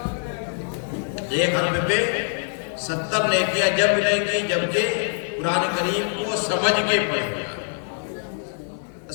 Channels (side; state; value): right; silent; 63 dB below the other